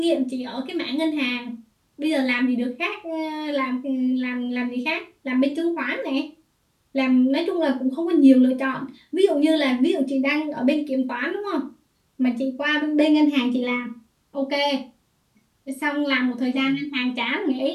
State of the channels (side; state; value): both; identical; correlation 1.00